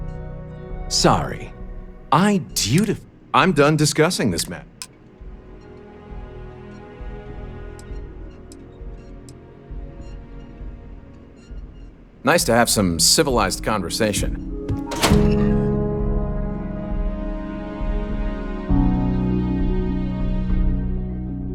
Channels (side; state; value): both; identical; correlation 1.00